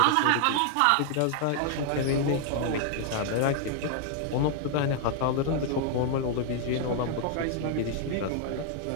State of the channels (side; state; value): both; different; correlation 0.00